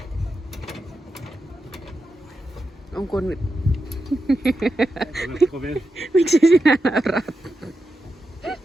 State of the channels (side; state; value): both; normal; correlation 0.88